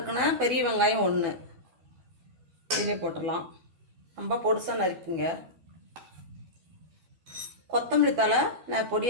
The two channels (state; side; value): late; left; 12 ms